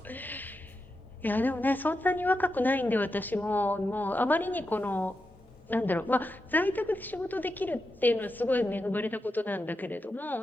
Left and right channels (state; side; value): normal; both; correlation 0.88